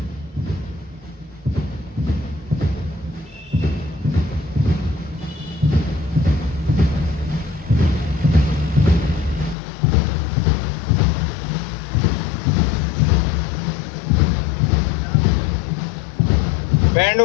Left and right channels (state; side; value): drops out; right; at 9.6 s